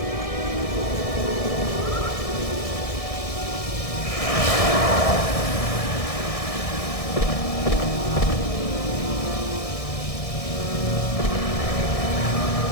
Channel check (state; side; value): late; right; 1.6 ms